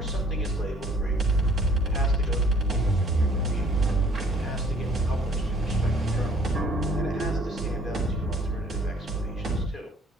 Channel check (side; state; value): both; normal; correlation 0.57